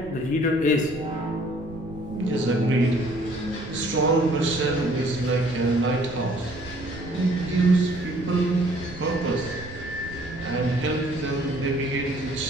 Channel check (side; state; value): right; noise; rumble, 15 dB below the sound